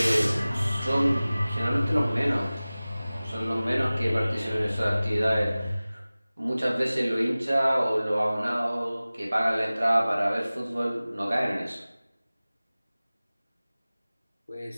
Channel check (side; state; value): both; inverted; correlation -0.98